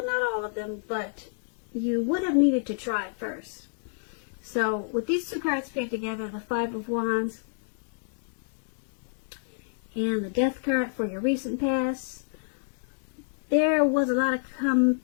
not all of them, but you would have needed to try it first. So with these two cards paired together, the Five of Wands and the Death card for your recent past, there was a lot of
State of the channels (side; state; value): right; silent; digital silence